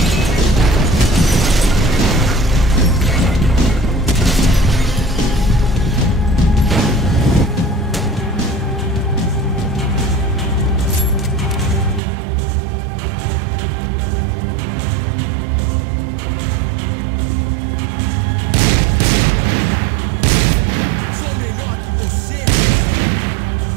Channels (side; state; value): left; drops out; at 12.0 s